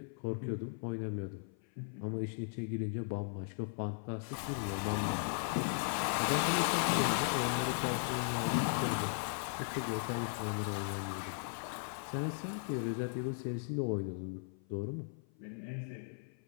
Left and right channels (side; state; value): right; silent; 53 dB below the other